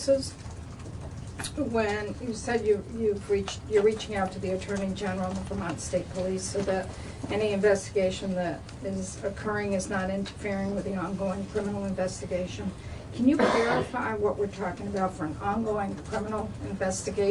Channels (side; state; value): both; identical; correlation 1.00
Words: when you said you're reaching out to the Attorney General of the Vermont State Police so that any investigation that is occurring is not interfering with the ongoing criminal investigation. Can you clarify what we're talking about for an ongoing criminal